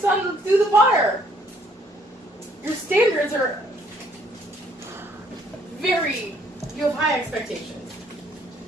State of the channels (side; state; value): both; normal; correlation 0.64